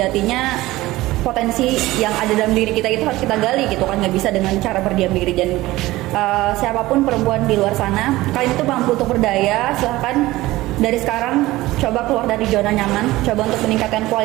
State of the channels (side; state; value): left; quieter; 18.0 dB